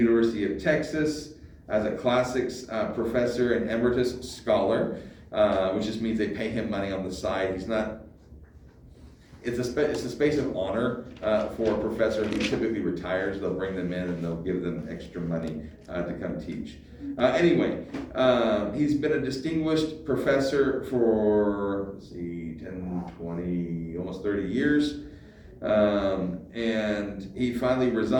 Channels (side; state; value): both; identical; correlation 1.00